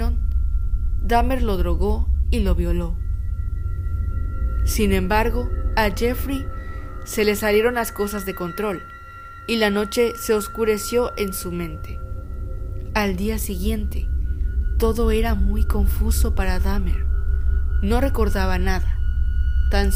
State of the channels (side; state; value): both; identical; correlation 1.00